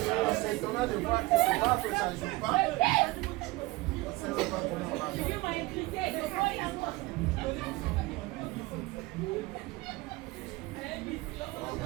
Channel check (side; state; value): left; quieter; 20.9 dB